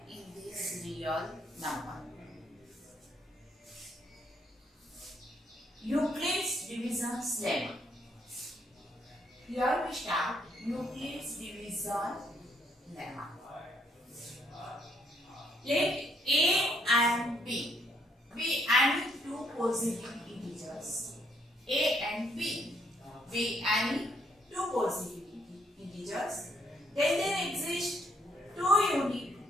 in this real number. Euclid's division lemma. Here we start Euclid's division lemma. Let A and B be any two positive integers. A and B be any two positive integers. Then there exist two unique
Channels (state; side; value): normal; both; correlation 0.70